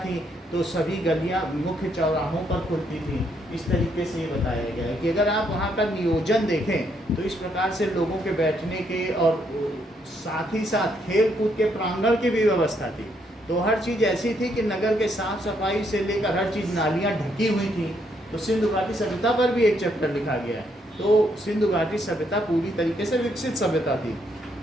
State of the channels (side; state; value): both; normal; correlation 0.73